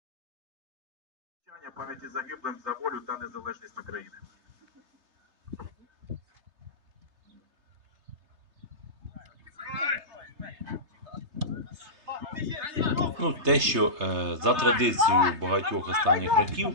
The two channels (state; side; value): late; left; 3.3 ms